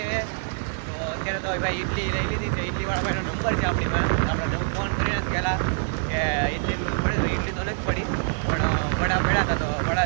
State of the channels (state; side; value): silent; left; 62 dB below the other